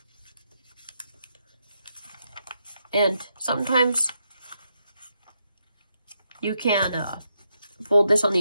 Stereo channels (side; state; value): both; inverted; correlation -0.81